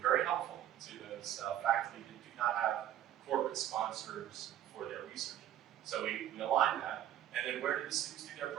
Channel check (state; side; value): quieter; left; 11.5 dB